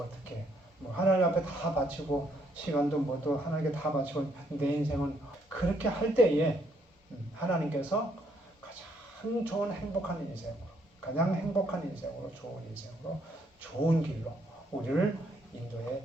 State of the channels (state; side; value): normal; both; correlation 0.71